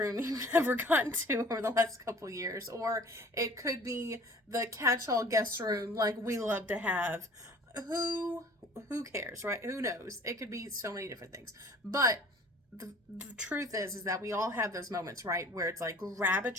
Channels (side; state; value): both; normal; correlation 0.49